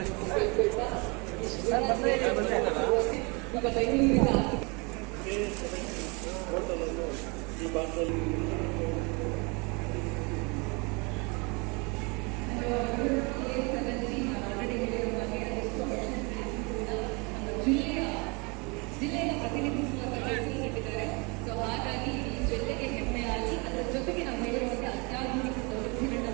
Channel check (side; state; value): left; quieter; 30.0 dB